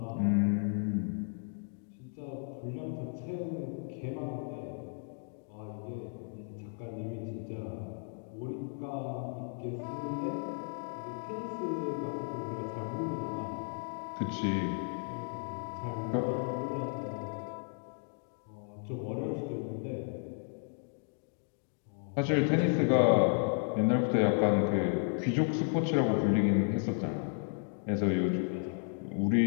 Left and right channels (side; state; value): right; silent; 55 dB below the other